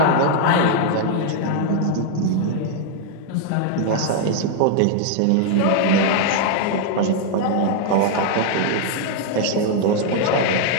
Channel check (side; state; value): both; different; correlation 0.00